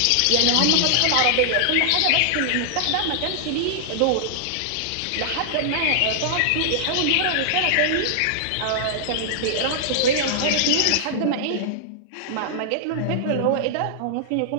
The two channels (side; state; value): both; different; correlation -0.01